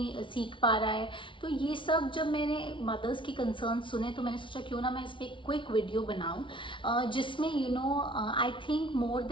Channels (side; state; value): right; late; 0.25 ms